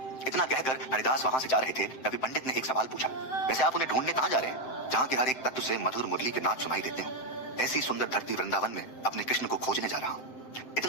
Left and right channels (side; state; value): right; late; 7.6 ms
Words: इतना कहकर हरिदास वहां से जा रहे थे तभी पंडित ने एक सवाल पूछा, वैसे आप उन्हें ढूंढने कहाँ जा रहे हैं जहाँ के हर एक तत्व से मधुर मुरली के नाद सुनाई देते हो? ऐसी सुंदर धरती वृंदावन में अपने कृष्ण को खोजने जा रहा हूँ।